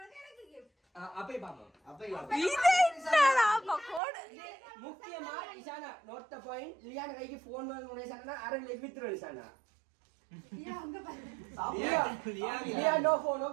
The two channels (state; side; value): drops out; left; at 4.0 s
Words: அப்பே பாப்போம் அப்பே இது என்னடா பக்கோட முக்கியமா இசானா நோட் தி பாயிண்ட் லியானா கைக்கு ஃபோன் வாங்குன இசானா அரல வித்ரோ இசானா லியா நோ ஃபோன்